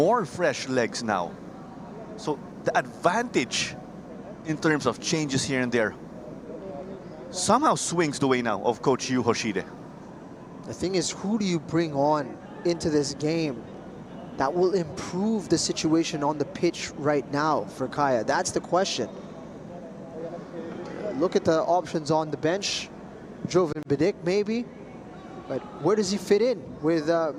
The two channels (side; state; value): both; identical; correlation 1.00